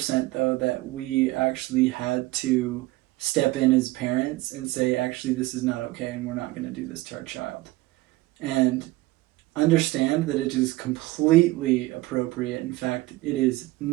though that we actually had to step in as parents and say, actually, this is not okay and we're not going to do this to our child. And understand that it is completely appropriate. In fact, it is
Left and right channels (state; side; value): quieter; left; 19.5 dB